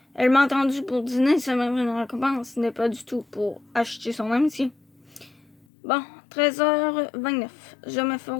Elle m'a attendu pour dîner, c'est même une récompense, ce n'est pas du tout pour acheter son amitié. Bon, 13h29. Je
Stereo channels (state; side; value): drops out; right; at 5.7 s